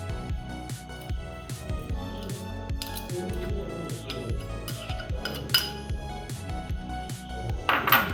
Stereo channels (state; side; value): identical; both; correlation 1.00